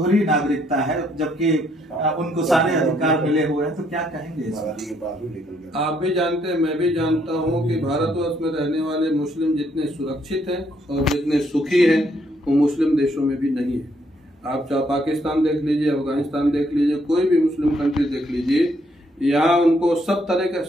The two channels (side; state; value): both; normal; correlation 0.71